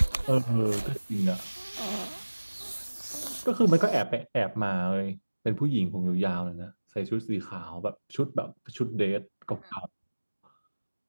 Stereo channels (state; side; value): inverted; both; correlation -1.00